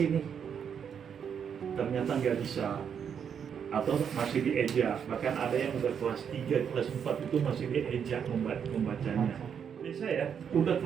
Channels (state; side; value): quieter; left; 7.6 dB